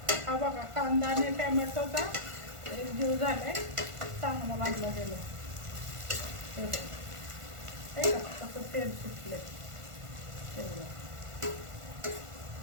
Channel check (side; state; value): left; late; 1.5 ms